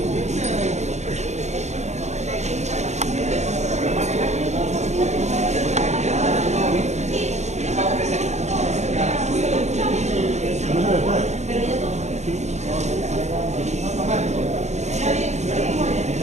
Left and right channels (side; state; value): left; late; 0.33 ms